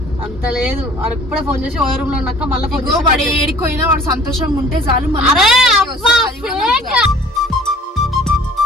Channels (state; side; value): normal; both; correlation 0.52